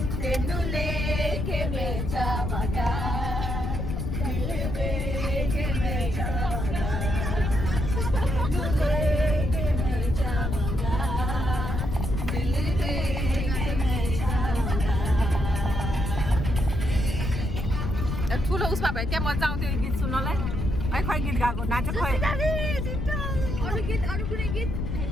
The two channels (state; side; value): noise; left; rumble, 2 dB below the sound